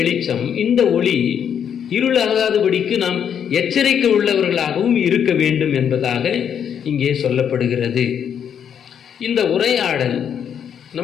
இந்த ஒளி இருளாகாதபடிக்கு நாம் எச்சரிக்கை உள்ளவர்களாகவும் இருக்க வேண்டும் என்பதாக இங்கே சொல்லப்படுகிறது. இந்த உரையாடல்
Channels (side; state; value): right; quieter; 8.3 dB